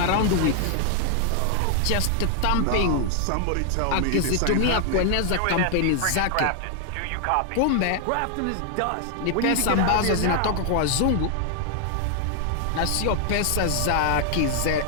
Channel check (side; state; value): both; different; correlation 0.00